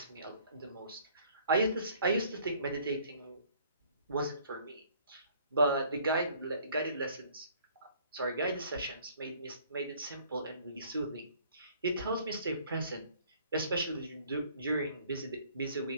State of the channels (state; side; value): inverted; both; correlation -0.58